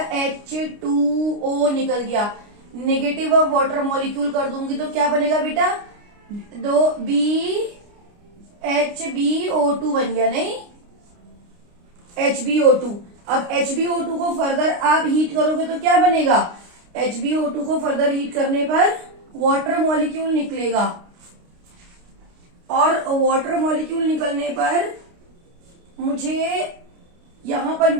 H2O निकल गया। नेगेटिव ऑफ वाटर मॉलिक्यूल कर दूंगी तो क्या बनेगा बेटा, HbO2 बन गया, नहीं, HbO2। अब HbO2 को फर्दर आप हीट करोगे तो क्या बनेगा, HbO2 को फर्दर हीट करने पर वाटर मॉलिक्यूल निकलेगा, और वाटर मॉलिक्यूल निकलने पर मुझे यहाँ पर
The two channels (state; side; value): late; left; 29 ms